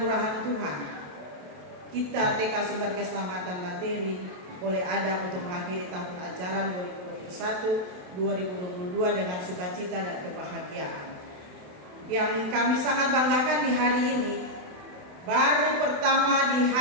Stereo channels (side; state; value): left; late; 27 ms